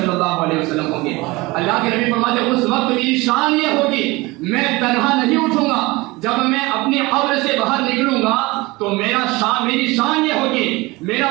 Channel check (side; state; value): left; quieter; 22.4 dB